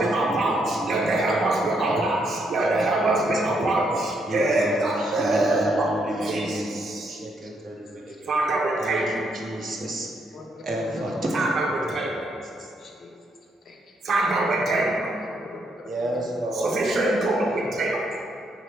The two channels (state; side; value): normal; both; correlation 0.75